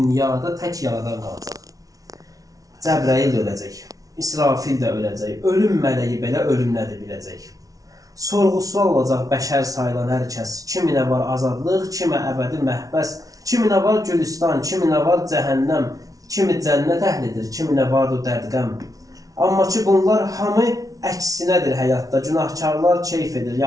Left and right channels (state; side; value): late; left; 0.18 ms